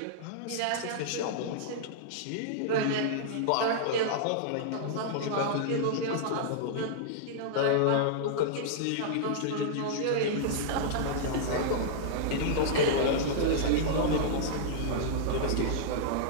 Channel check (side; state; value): both; different; correlation -0.02